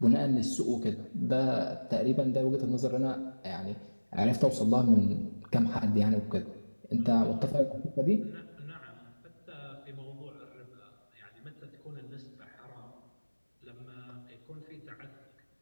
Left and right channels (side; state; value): both; inverted; correlation -1.00